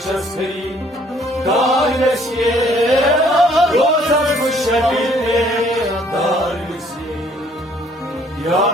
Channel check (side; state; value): both; normal; correlation 0.61